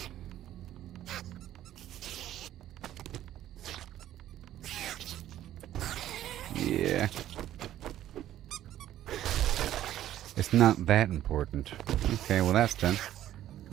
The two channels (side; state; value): left; quieter; 12.5 dB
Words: Yeah. It's not that important. Okay, well that's done.